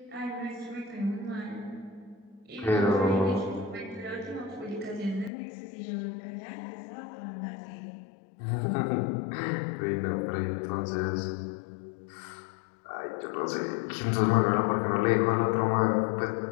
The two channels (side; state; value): right; drops out; at 5.3 s